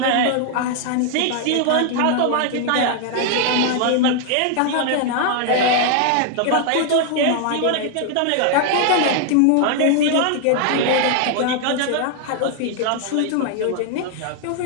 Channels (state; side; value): different; both; correlation 0.00